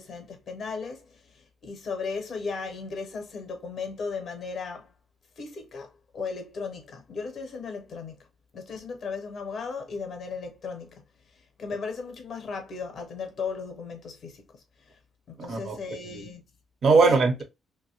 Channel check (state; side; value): normal; both; correlation 0.72